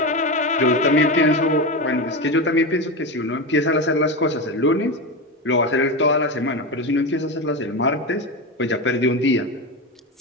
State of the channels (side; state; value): both; normal; correlation 0.18